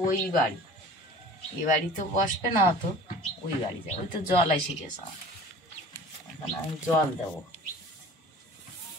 ওই বাড়ি, এই বাড়ি তো বসবে না, তো ওই বাড়ি যাবে। ওই তো জল এসে গেছে আমার, এখন আমি জল দেবো।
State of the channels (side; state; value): both; normal; correlation 0.44